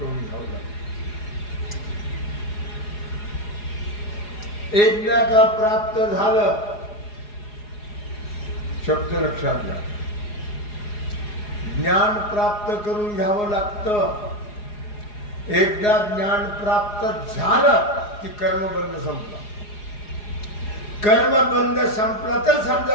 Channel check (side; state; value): right; late; 4.8 ms